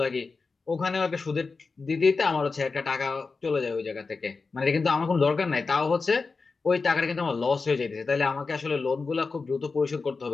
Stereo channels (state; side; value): quieter; right; 4.3 dB